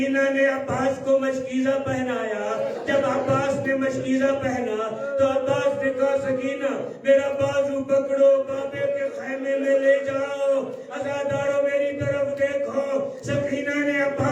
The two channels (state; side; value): identical; both; correlation 1.00